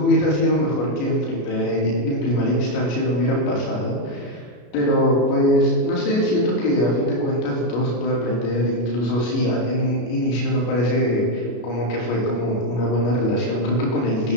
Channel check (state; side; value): late; right; 33 ms